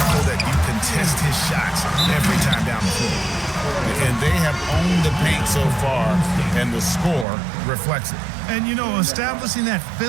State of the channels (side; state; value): left; drops out; at 7.2 s